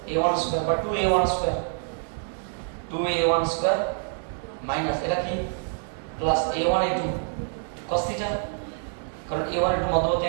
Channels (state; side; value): silent; left; 58 dB below the other